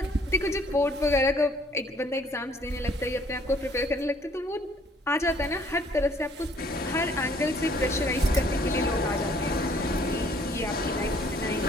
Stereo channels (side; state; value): both; normal; correlation 0.61